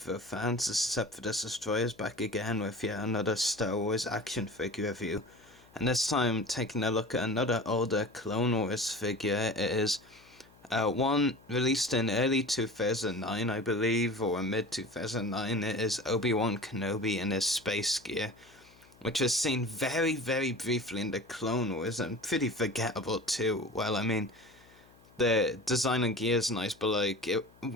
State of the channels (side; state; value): left; noise; hum, 27 dB below the sound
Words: fans, this is Sephiroth Destroyers back again with yet another Star Wars action figure review. And this time taking a look at another older Clone Wars figure. It is one released in early 2009 I believe, or mid 2009. It is Obi-Wan Kenobi in his space gear, which was seen very briefly in the Clone Wars and pretty forgettable too. Well, I mean, the design and gear is nice, but like